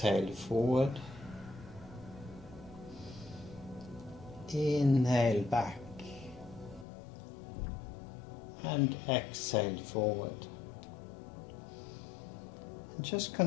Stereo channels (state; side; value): drops out; right; at 6.9 s